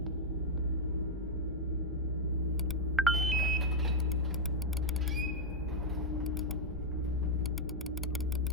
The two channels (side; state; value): both; normal; correlation 0.00